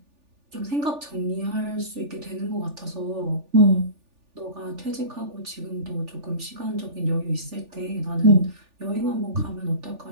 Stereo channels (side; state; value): left; late; 3.4 ms